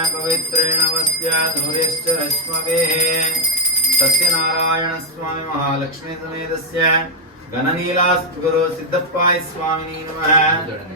ಪವಿತ್ರೇಣ ವಸ್ತ್ಯಾಧುರ್ಯಶ್ಚ ರಶ್ಮವೇಃ. ಸತ್ಯನಾರಾಯಣ ಸ್ವಾಮಿ ಮಹಾಲಕ್ಷ್ಮೀ ಸಮೇತಸ್ಯ ಘನನೀಲಾಸ್ತು ಗುರು ಸಿದ್ದಪ್ಪಾಯ ಸ್ವಾಮಿನೇ ನಮಃ.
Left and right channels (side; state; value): both; normal; correlation -0.05